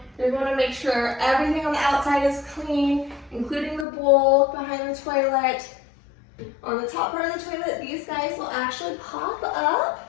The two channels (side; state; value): right; drops out; at 3.9 s